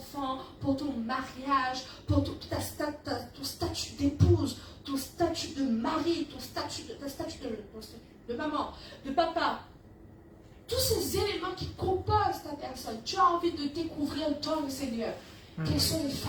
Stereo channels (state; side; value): identical; both; correlation 1.00